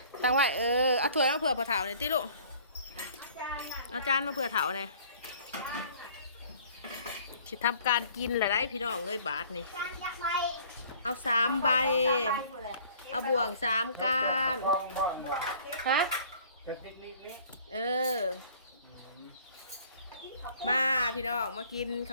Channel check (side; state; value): both; inverted; correlation -0.53